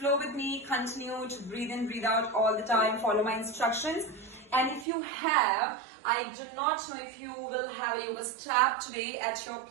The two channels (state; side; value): drops out; left; at 4.9 s